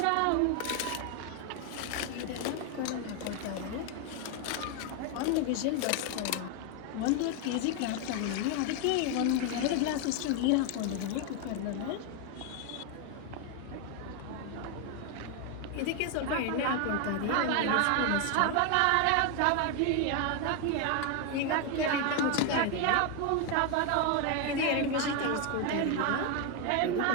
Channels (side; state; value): both; different; correlation 0.01